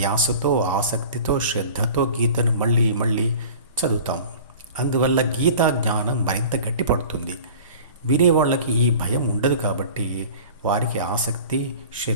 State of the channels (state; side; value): inverted; both; correlation -0.41